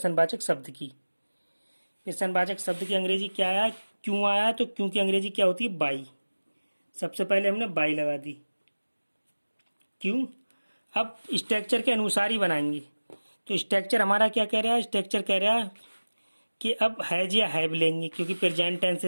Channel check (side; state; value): both; inverted; correlation -1.00